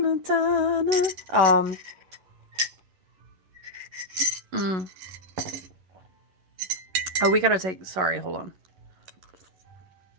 Oh, we gotta take. Sorry, hold on.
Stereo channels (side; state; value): left; late; 11 ms